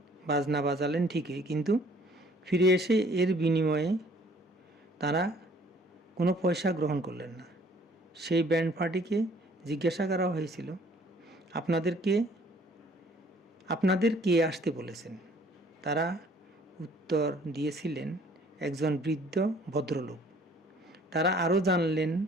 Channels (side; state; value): both; normal; correlation 0.57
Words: বাজনা বাজালেন ঠিকই, কিন্তু ফিরে এসে এর বিনিময়ে তারা কোনো পয়সা গ্রহণ করলেন না। সেই ব্যান্ড পার্টিকে জিজ্ঞাসা করা হয়েছিল, আপনাদের কে আসতে বলেছেন? তারা উত্তর দিয়েছিলেন, একজন বৃদ্ধ ভদ্রলোক। তারা